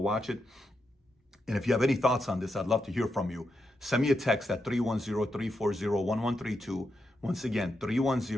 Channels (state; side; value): normal; both; correlation 0.85